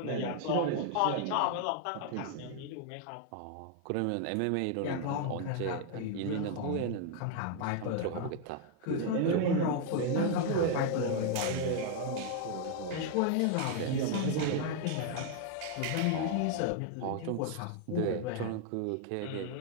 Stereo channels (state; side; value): different; both; correlation 0.00